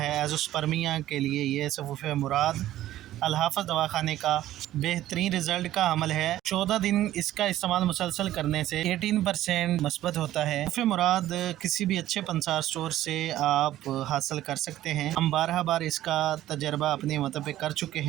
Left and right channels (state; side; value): quieter; left; 13.8 dB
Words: एज़ोस्पर्मिया के लिए ये सफ़ूफ़ मुराद अल-हाफ़ज़ दवाखाने का बेहतरीन रिज़ल्ट का अमल है। 14 दिन इसका इस्तेमाल मुसलसल करने से 18% मस्बत होता है। सफ़ूफ़ मुराद किसी भी अच्छे पंसार स्टोर से आप हासिल कर सकते हैं। हम 12 बार इसका तजर्बा अपने मतलब पे कर चुके